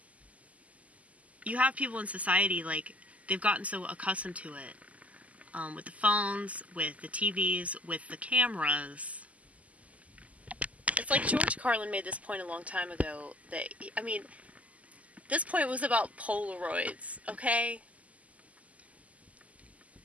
you have people in society, like, they've gotten so accustomed to it. With the phones, with the TVs, with the cameras. It's like George Carlin made this point a long time ago that, I mean, this point was about Polaroids, okay?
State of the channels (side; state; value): left; late; 0.071 ms